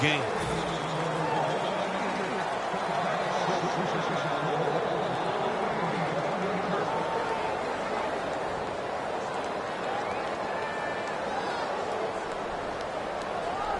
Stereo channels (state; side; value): identical; both; correlation 1.00